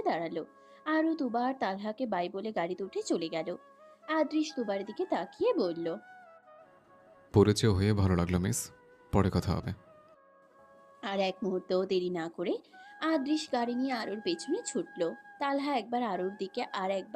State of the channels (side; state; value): both; identical; correlation 1.00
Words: দাঁড়ালো। আরু তুবা আর তালহাকে বাই বলে গাড়িতে উঠে চলে গেল। আদৃশ তুবার দিকে তাকিয়ে বলল, পরিচয় হয়ে ভালো লাগলো মিস, পরে কথা হবে। আর এক মুহূর্তও দেরি না করে আদৃশ গাড়ি নিয়ে আরুর পেছনে ছুটল। তালহা একবার আরুর দিকে আর